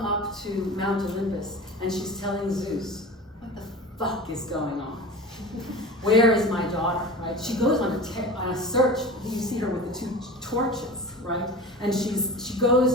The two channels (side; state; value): both; normal; correlation 0.35